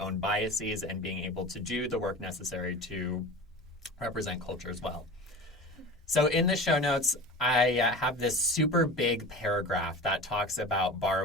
biases and being able to do the work necessary to represent culture as well. So in the show notes, I have this super big paragraph that talks about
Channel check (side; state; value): both; normal; correlation 0.34